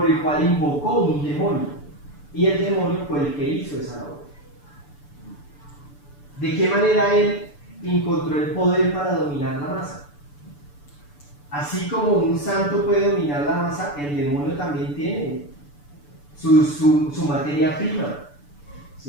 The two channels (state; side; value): late; right; 6.9 ms